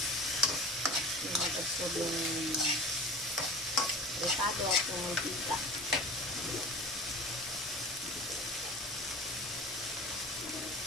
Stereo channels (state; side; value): normal; both; correlation 0.38